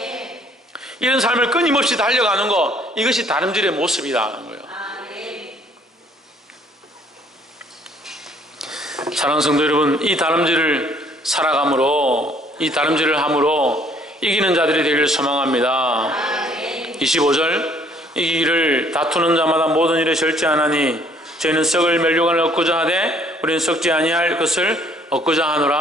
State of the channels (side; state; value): both; normal; correlation 0.61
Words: 이런 삶을 끊임없이 달려가는 것, 이것이 다름질의 모습이라는 거예요. 사랑하는 성도 여러분, 이 다름질을 살아감으로, 이 다름질을 함으로 이기는 자들이 되기를 소망합니다. 25절, 이 길을 다투는 자마다 모든 일에 절제하나니 저희는 썩을 멸류관을 얻고자 하되 우리는 썩지 아니할 것을 얻고자